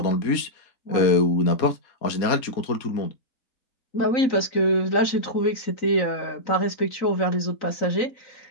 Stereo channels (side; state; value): right; late; 3.9 ms